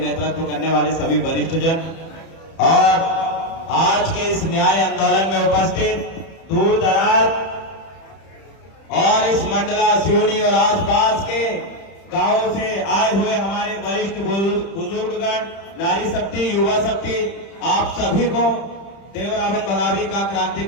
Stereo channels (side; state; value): right; late; 31 ms